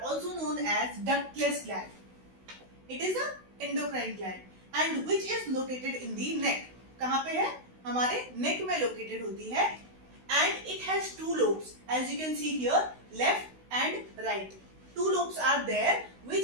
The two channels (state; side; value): late; left; 16 ms